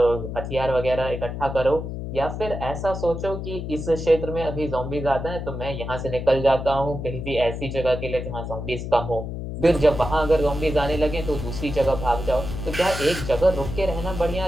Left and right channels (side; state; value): left; noise; hum, 6 dB below the sound